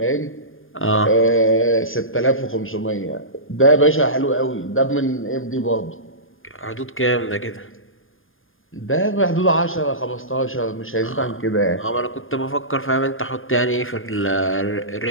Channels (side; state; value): right; late; 0.59 ms